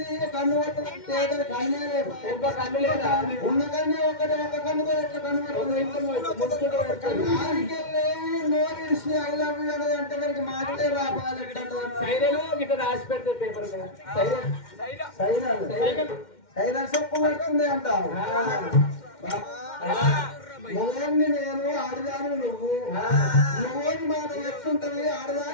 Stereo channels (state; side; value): late; right; 2.1 ms